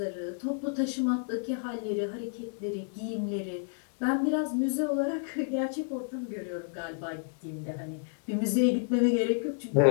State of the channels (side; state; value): right; silent; digital silence